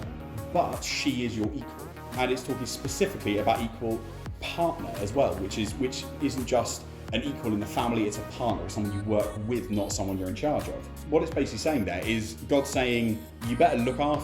but she is your equal. And it's talking specifically about equal partner as well, which isn't just an equal in the family, it's a partner, it's someone you work with, not someone you're in charge of. What it's basically saying there is God saying, you better look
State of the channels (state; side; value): identical; both; correlation 1.00